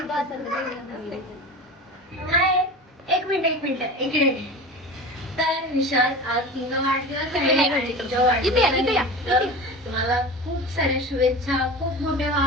एक मिनिट इकडे तर विशाल आज तुला वाढदिवस आहे तुझ्या वाढदिवसानिमित्त तुम्हाला खूप साऱ्या शुभेच्छा खूप मोठे व्हा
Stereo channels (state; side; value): normal; both; correlation 0.32